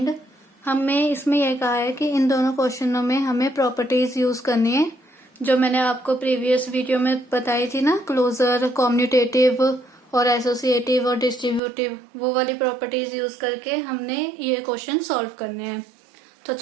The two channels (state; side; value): drops out; left; at 11.6 s